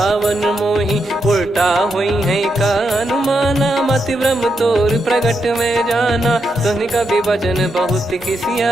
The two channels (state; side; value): normal; both; correlation 0.83